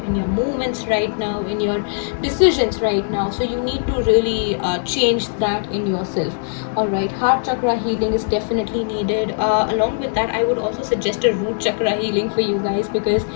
in your movements right now, in your decisions right now. So you need to really change that in yourself. All right, heart chakra healing is definitely needed. Along with that, I would also suggest a root chakra healing for you guys, because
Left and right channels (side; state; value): right; silent; digital silence